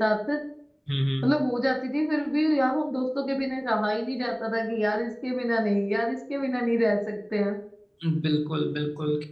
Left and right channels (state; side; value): identical; both; correlation 1.00